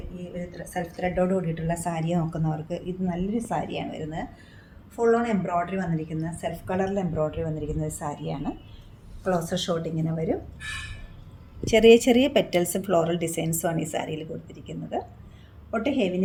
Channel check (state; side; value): identical; both; correlation 1.00